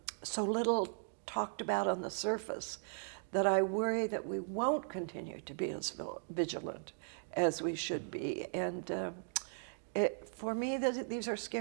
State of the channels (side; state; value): left; silent; digital silence